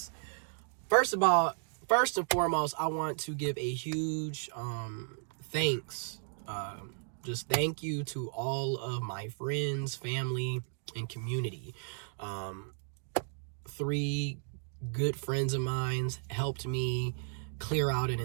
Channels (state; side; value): silent; left; digital silence